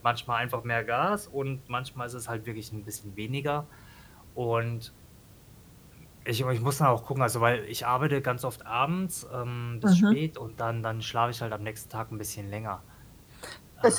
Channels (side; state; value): both; identical; correlation 1.00